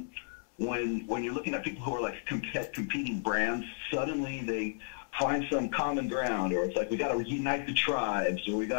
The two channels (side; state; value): right; silent; 55 dB below the other